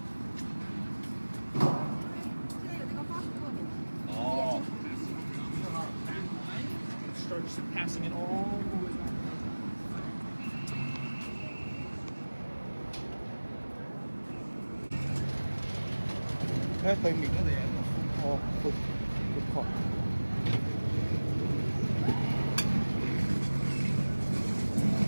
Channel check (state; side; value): inverted; both; correlation -1.00